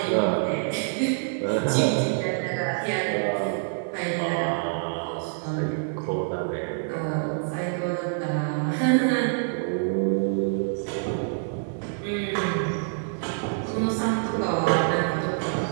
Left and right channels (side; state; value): left; silent; digital silence